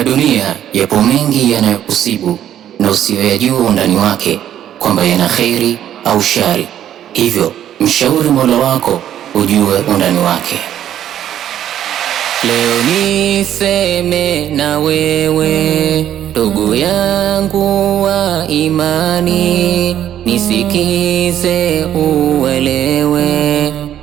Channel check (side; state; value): left; quieter; 10.9 dB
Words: dunia yapo mengi yanayokusibu na usiyoyajua undani wake, kwamba yana kheri au shari. Hivyo mshauri Mola wako ujue undani wake. Leo niseme na wewe, ndugu yangu wa imani, nisikize uelewe